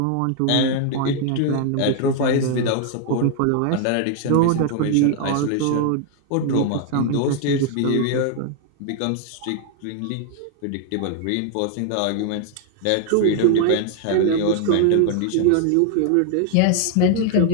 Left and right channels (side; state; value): both; different; correlation 0.00